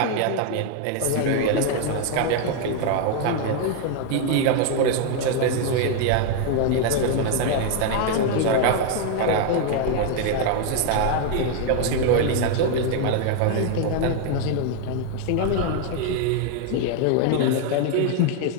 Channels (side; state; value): both; different; correlation 0.00